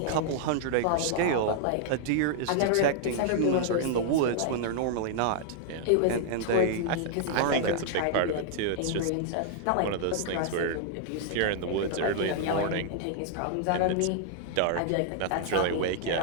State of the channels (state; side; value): different; both; correlation -0.01